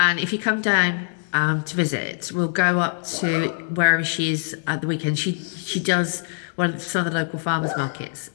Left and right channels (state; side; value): silent; right; digital silence